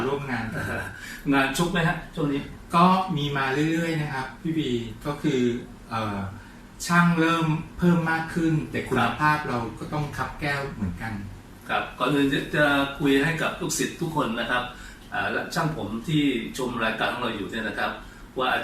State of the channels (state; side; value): identical; both; correlation 1.00